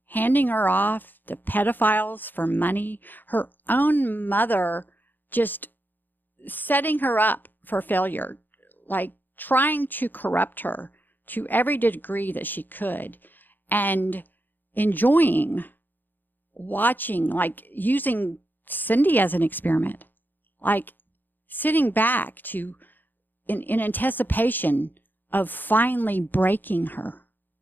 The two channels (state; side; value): late; right; 0.090 ms